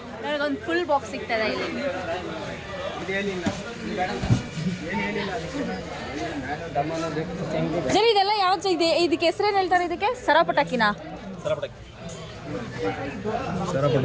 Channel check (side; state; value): both; identical; correlation 1.00